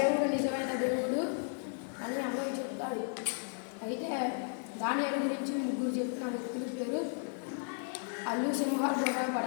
నిజమైన దేవుడు అని అందరూ చెప్తాడు. అయితే దానియేలు గురించి ముగ్గురు చెప్పిన వ్యక్తుల పేరు అల్లు సింహాలు కూడా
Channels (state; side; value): silent; right; 55 dB below the other